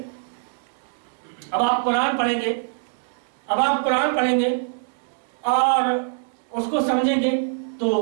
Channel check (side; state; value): left; silent; 63 dB below the other